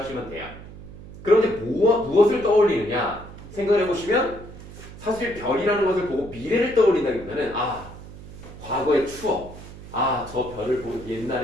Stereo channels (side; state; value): right; noise; hum, 15 dB below the sound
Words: 돼요. 그런데 무엇을 떠올리느냐 생각을 해보시면 사실 별이라는 것을 보고 미래를 떠올린다기보다는 과거의 추억, 아, 저 별을 보고